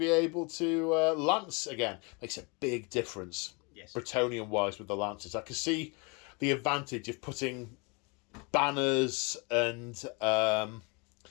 able to lance again. Makes a big difference. Yes. Bretonnian-wise with the lances. I can see the advantage of putting banners and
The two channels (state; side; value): quieter; right; 30.3 dB